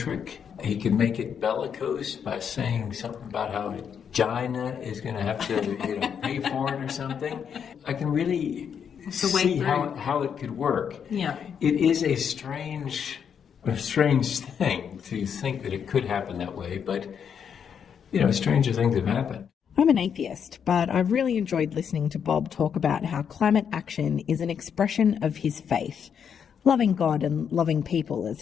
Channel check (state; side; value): quieter; right; 7.6 dB